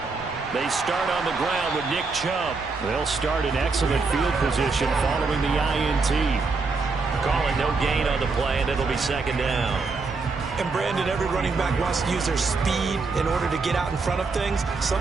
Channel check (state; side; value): quieter; left; 4.2 dB